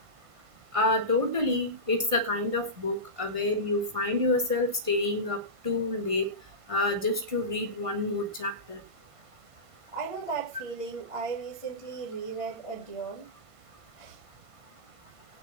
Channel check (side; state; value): left; late; 1.5 ms